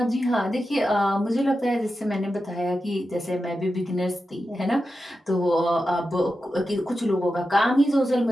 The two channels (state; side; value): normal; both; correlation 0.90